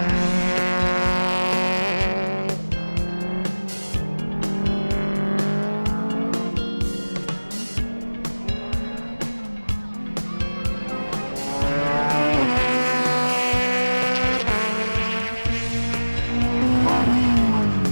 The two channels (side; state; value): both; inverted; correlation -1.00